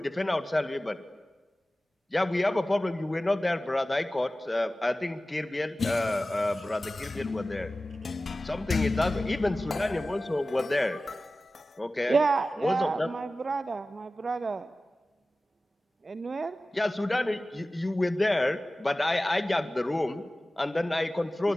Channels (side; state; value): both; normal; correlation 0.96